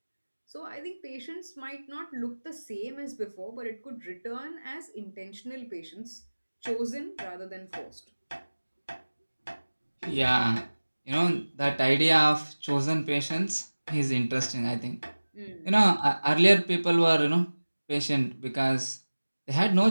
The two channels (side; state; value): both; inverted; correlation -1.00